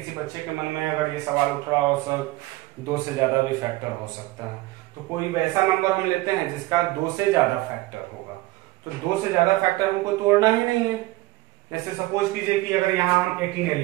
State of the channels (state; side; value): quieter; left; 19.3 dB